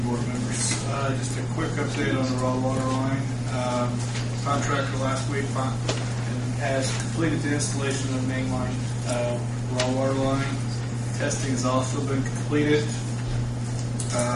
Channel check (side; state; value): both; identical; correlation 1.00